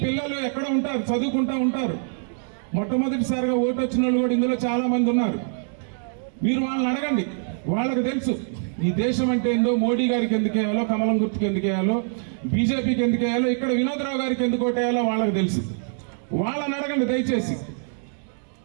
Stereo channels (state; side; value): silent; left; digital silence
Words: పిల్లలు ఎక్కడ ఉంటారు? చదువుకుంటా ఉంటారు. మొట్టమొదటిసారిగా ఓటు వచ్చిన వాళ్ళు కూడా ఇందులో చాలా మంది ఉన్నారు. మీరు వాళ్ళని అడగండి, వాళ్ళకి తెలుసు ఈ దేశం అంటే ఏందో, మోడీ గారికి ఎందుకు వేయాలో, కమలం గుర్తుకు ఎందుకు వేయాలో, బీజేపీకి ఎందుకు వేయాలో, ఇక్కడ వినోద్రావు గారికి ఎందుకు ఓటేయాలో వాళ్ళకి తెలుసు. వాళ్ళని అడగండి దయచేసి.